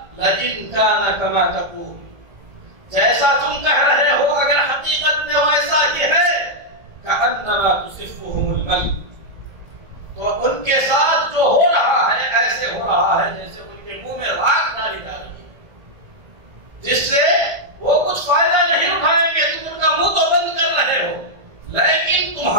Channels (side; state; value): left; late; 1.7 ms